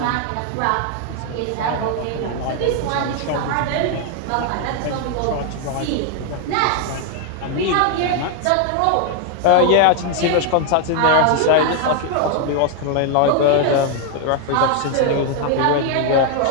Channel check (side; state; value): both; different; correlation 0.00